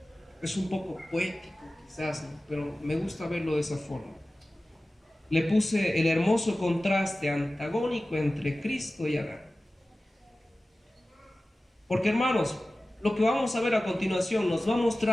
es un poco poético quizás, ¿no? Pero me gusta verlo de esa forma. Le puse el hermoso contraste antagónico entre Cristo y Adán. Porque, hermanos, lo que vamos a ver a continuación nos va a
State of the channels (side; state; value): both; normal; correlation 0.96